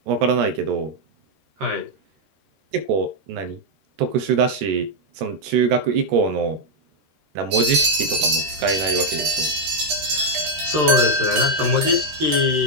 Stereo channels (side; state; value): left; late; 13 ms